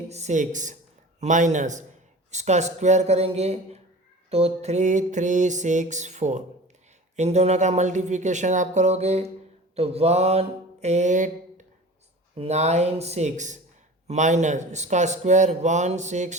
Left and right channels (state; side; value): normal; both; correlation 0.38